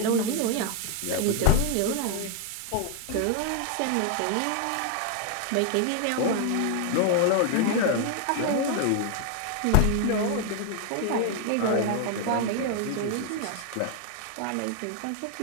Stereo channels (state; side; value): different; both; correlation 0.00